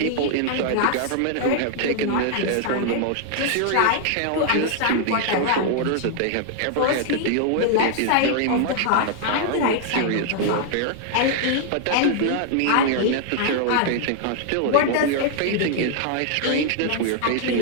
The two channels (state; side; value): different; both; correlation 0.00